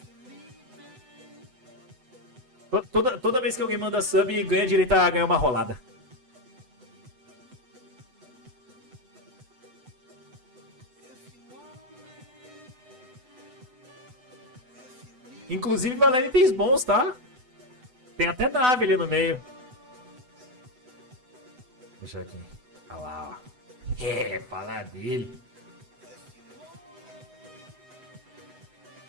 Toda vez que alguém manda sub, ganha direito a ganhar uma rolada. Inclusive, valendo itens bons, tá? Tem até nave ali no meio. Deixa aqui. Olha lá, ó. É, falar dele.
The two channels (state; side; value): late; left; 8.0 ms